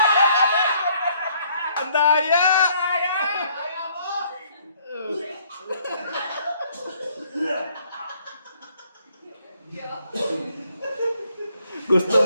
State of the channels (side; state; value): both; inverted; correlation -0.65